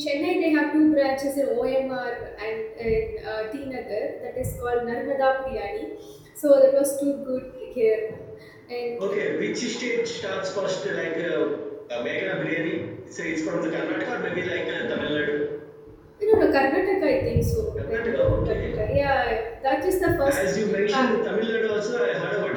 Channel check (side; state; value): both; identical; correlation 1.00